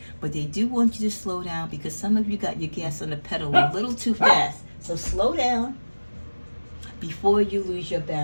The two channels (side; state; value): both; inverted; correlation -1.00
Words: But they do want you to slow down, because some of you got your gas on the pedal a little too fast. So slow down before you lose your